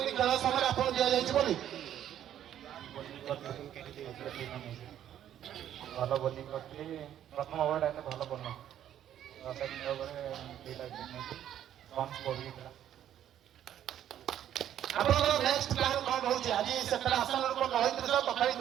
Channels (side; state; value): left; quieter; 10.8 dB